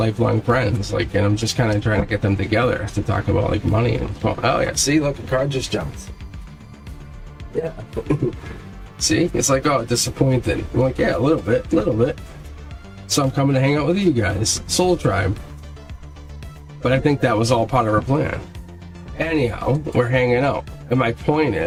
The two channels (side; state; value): both; identical; correlation 1.00